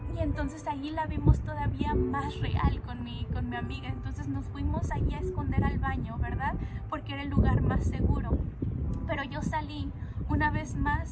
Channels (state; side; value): identical; both; correlation 1.00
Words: Y entonces allí la vimos todavía más real con mi amiga. Entonces nos fuimos allí a esconder al baño, ¿verdad? Porque era el lugar más seguro. Pero yo salí una vez